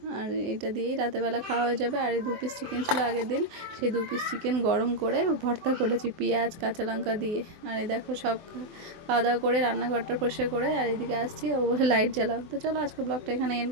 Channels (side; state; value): left; late; 24 ms